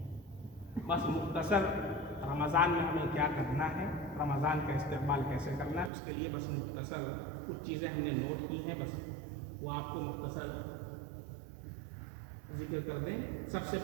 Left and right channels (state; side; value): drops out; left; at 5.9 s